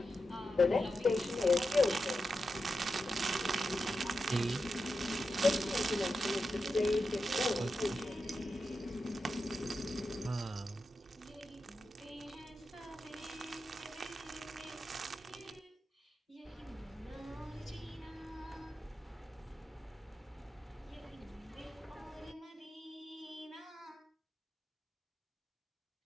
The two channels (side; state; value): both; normal; correlation 0.89